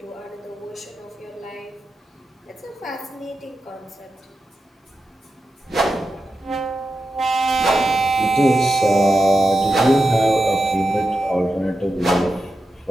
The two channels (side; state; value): both; normal; correlation 0.90